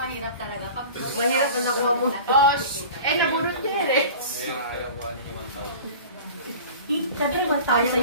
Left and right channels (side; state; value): both; inverted; correlation -0.39